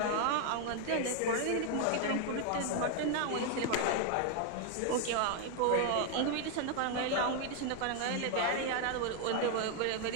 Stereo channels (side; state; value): both; different; correlation 0.00